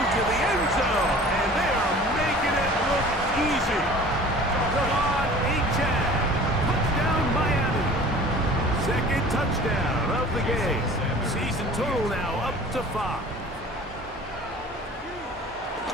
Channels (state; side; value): normal; both; correlation 0.45